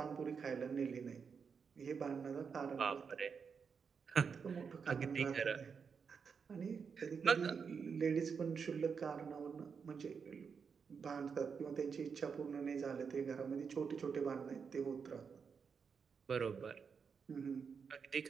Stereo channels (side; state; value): left; quieter; 6.1 dB